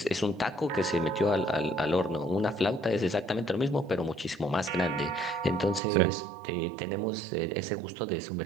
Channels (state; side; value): drops out; left; at 5.8 s